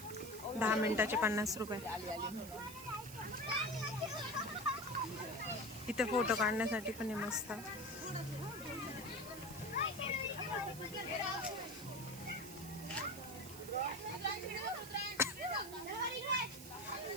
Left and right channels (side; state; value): right; noise; hiss, 13 dB below the sound